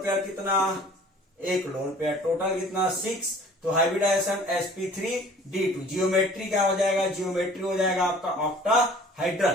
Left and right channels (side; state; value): both; normal; correlation 0.49